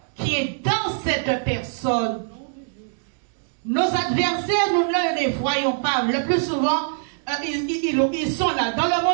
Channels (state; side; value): silent; left; digital silence